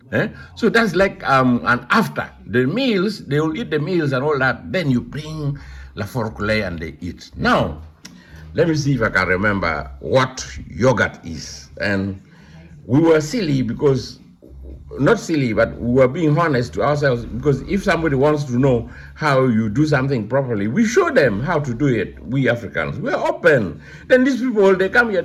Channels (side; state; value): both; identical; correlation 1.00